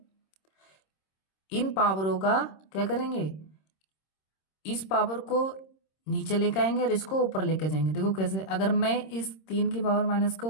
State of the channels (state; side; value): late; right; 26 ms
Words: इन पावरों का क्या करेंगे, इस पावर को नीचे लेके आएंगे और इसको ऊपर लेके जाएंगे। देखो कैसे, अगर मैं इस 3 की पावर माइनस